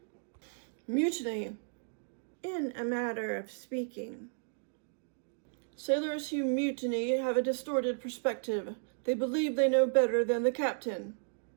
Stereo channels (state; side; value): silent; left; digital silence